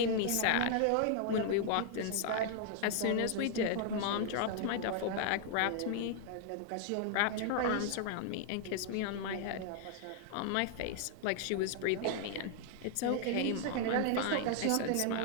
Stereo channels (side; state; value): both; different; correlation 0.00